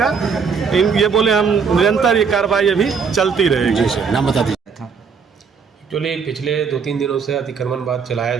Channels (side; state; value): left; quieter; 5.8 dB